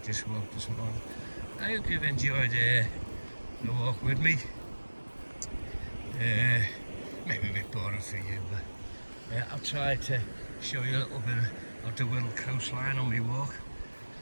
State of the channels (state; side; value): inverted; both; correlation -1.00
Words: this walk this morning. I hope you've enjoyed the walk with me. Maybe a bit boring for you, but I've tried to show you a little bit of the Wirral coastline on my walk,